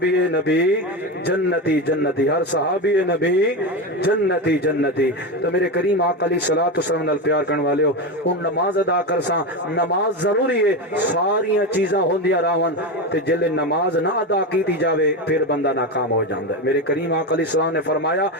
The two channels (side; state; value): both; normal; correlation 0.17